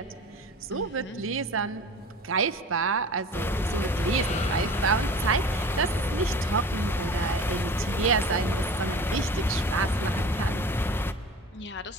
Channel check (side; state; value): both; normal; correlation 0.39